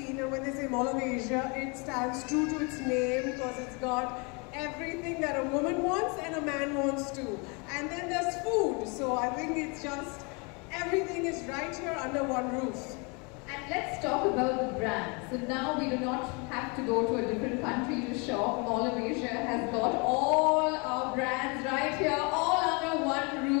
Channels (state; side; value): quieter; right; 31.5 dB